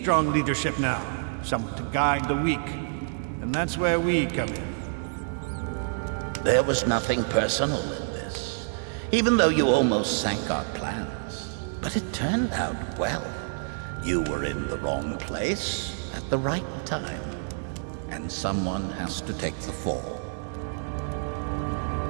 leadership now, someone to guide the weak. And that's where we come in. There was nothing personal in this, even though you almost sank our plans. But it turned out well. You were in the wrong place at the right time, and someone has to take the fall.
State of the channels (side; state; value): left; silent; digital silence